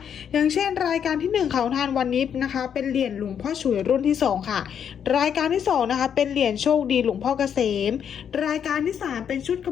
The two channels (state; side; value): quieter; right; 8.2 dB